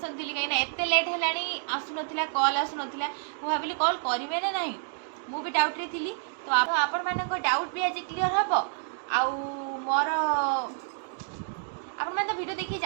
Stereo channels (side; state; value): left; silent; digital silence